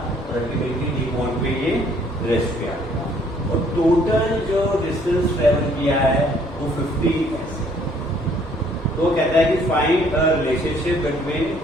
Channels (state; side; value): normal; both; correlation 0.62